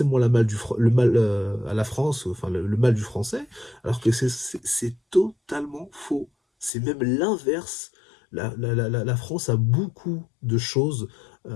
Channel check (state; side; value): drops out; right; at 6.7 s